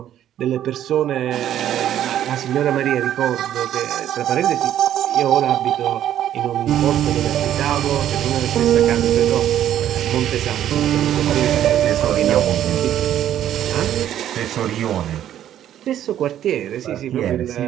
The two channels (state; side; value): quieter; left; 11.3 dB